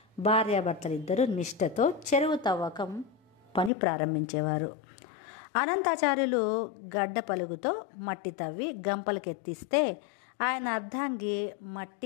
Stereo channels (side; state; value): right; drops out; at 3.7 s